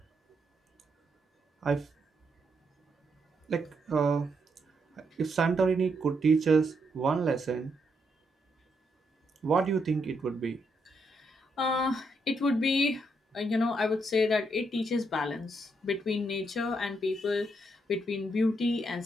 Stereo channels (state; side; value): normal; both; correlation 0.78